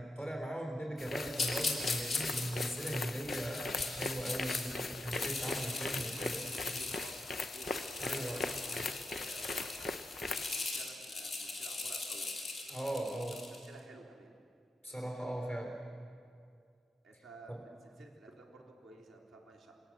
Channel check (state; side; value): normal; both; correlation 0.85